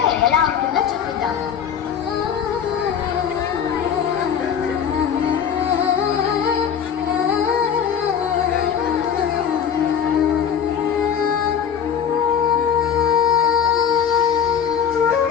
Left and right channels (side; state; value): right; quieter; 7.8 dB